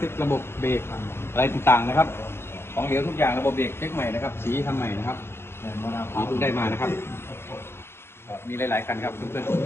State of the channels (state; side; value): late; right; 0.12 ms